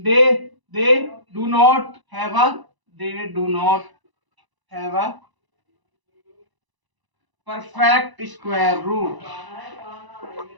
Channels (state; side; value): late; left; 1.0 ms